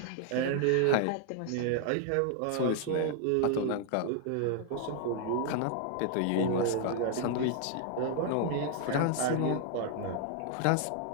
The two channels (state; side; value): different; both; correlation 0.00